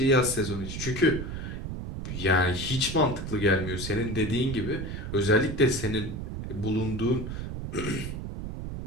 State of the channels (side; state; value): right; noise; rumble, 6 dB below the sound